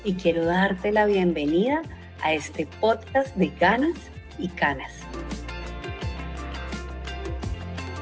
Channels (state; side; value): identical; both; correlation 1.00